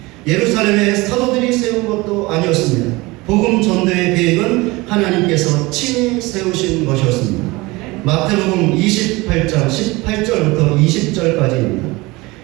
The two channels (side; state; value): left; quieter; 22.5 dB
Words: 예루살렘의 사도들이 세운 것도 아니었습니다. 복음 전도의 계획은 하나님께서 친히 세우신 것이었습니다. 마태복음 28장 18절부터 20절까지입니다.